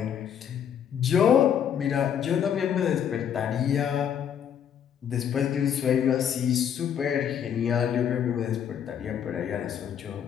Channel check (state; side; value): quieter; right; 8.7 dB